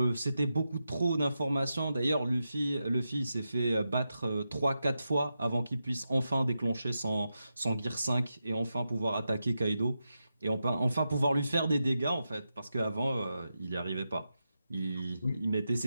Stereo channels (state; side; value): inverted; both; correlation -0.88